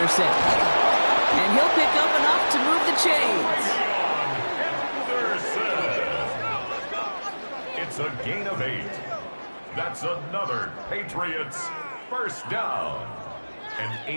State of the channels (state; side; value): inverted; both; correlation -1.00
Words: And he'll pick up enough to move the chains. It's a gain of 8. That's another Patriots first down. An